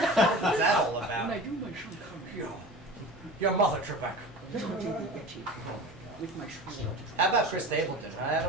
that all about? When I do my Sean Connery, Your mother, Trebek. with my Sean. How about Chris Stapleton, huh,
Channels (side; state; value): both; normal; correlation 0.36